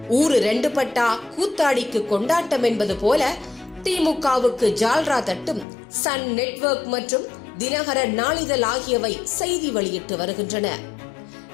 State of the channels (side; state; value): right; drops out; at 5.7 s